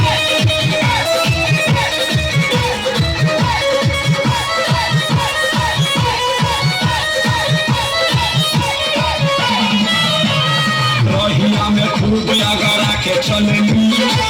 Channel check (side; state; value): both; identical; correlation 1.00